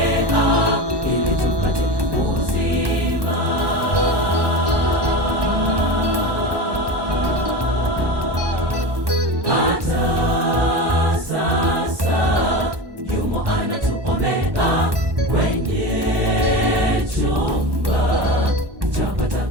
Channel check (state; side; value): late; left; 1.2 ms